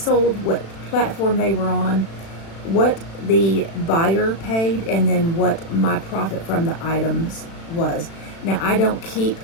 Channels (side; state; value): right; late; 36 ms